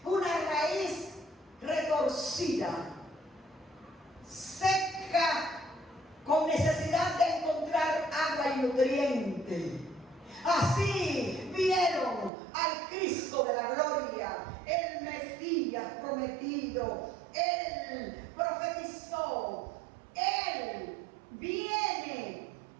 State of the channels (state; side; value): drops out; left; at 12.3 s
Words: una raíz retorcida, seca, con necesidad de encontrar agua y nutriente. Así vieron al Cristo de la gloria, el Mesías prometido. Él profetizó, Él viene.